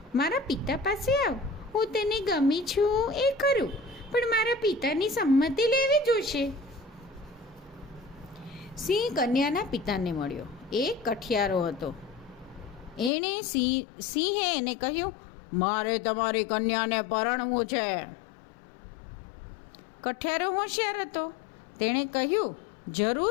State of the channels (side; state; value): right; drops out; at 13.1 s